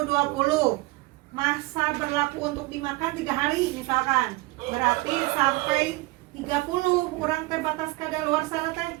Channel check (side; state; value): left; quieter; 21.8 dB